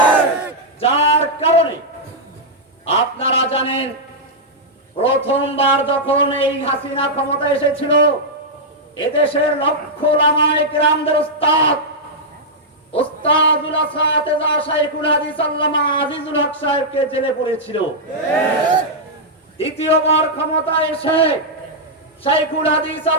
যার কারণে আপনারা জানেন, প্রথমবার যখন এই হাসিনা ক্ষমতা এসেছিল, এদেশের লক্ষ ওলামায়ে কেরামদের উস্তাদুল আসাতিজা শাইখুল হাদিস আল্লামা আজিজুল হক সাহেবকে জেলে পড়েছিল। দ্বিতীয়বার ক্ষমতা এসে শাইখুল হাদিস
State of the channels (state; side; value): normal; both; correlation -0.07